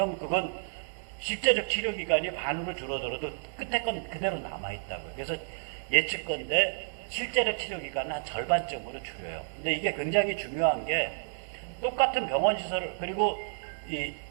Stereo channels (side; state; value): left; silent; digital silence